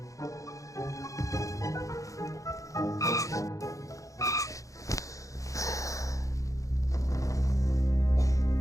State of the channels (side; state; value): right; late; 0.16 ms